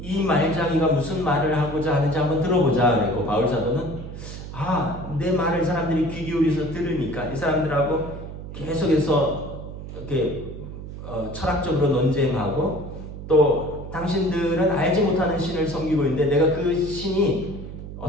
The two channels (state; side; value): noise; right; hum, 10 dB below the sound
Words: 말장이가 무슨 말을 하고자 하는지 한번 들어보자 그랬고, 바울 사도는 내 말을 사람들이 귀 기울여서 들으니까 이 사람들하고 계속해서 이렇게 철학적으로 논쟁하고, 또 당신들은 알지 못하는 신을 섬기고 있는데 내가 그 신이